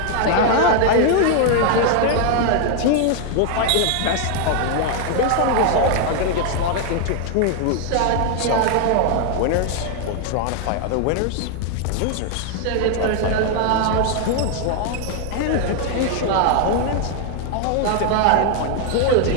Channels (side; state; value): both; different; correlation 0.00